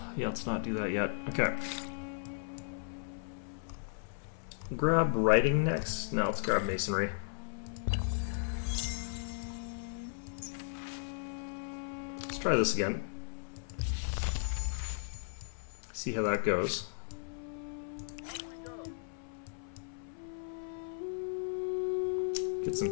Yeah, let's not do that yet. Okay. Grab writing next. No, let's grab masonry. Let's try this again. See how that goes. Get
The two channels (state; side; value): silent; right; 54 dB below the other